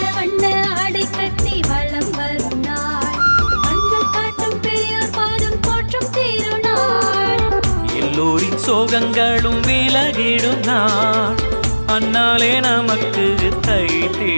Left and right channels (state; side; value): inverted; both; correlation -1.00